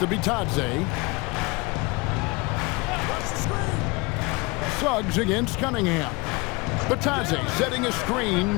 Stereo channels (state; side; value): quieter; right; 25.6 dB